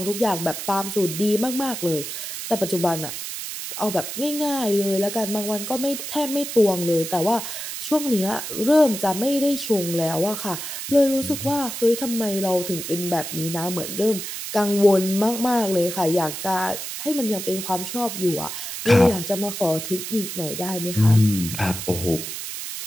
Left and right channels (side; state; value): right; noise; hiss, 7 dB below the sound